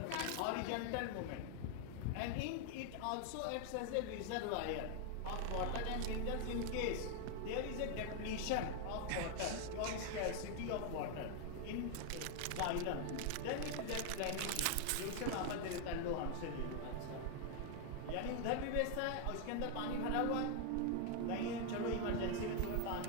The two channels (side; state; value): both; different; correlation 0.00